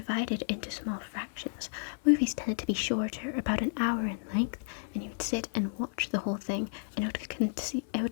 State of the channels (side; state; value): right; silent; 55 dB below the other